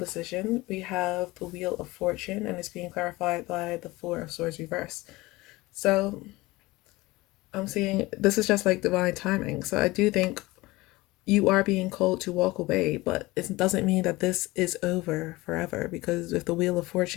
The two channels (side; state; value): right; quieter; 20.6 dB